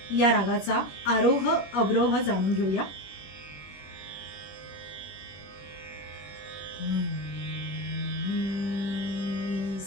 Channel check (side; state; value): right; late; 21 ms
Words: या रागाचा आरोह अवरोह जाणून घेऊया।